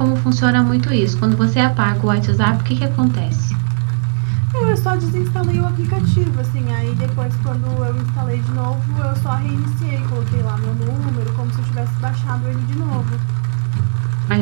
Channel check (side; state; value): left; silent; digital silence